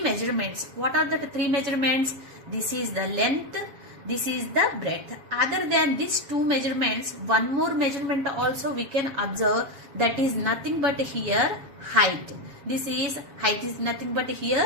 What are the three measurements? This is the length, this is the breadth. Other than these two measurements, one more measurement also we can observe, that is nothing but here height. This is height is nothing but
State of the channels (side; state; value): left; late; 7.3 ms